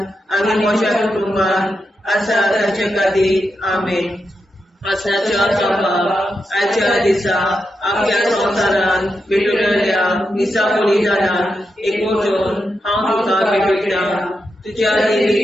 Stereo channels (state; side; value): normal; both; correlation 0.87